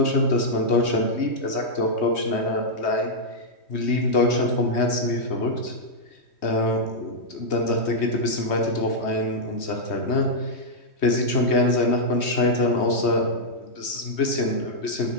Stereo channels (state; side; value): late; right; 3.2 ms